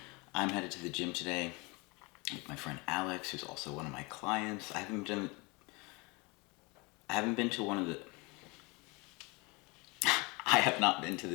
I'm headed to the gym today with my friend Alex, who's also one of my clients. I haven't been to one of the. I have not been to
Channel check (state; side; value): quieter; right; 27.2 dB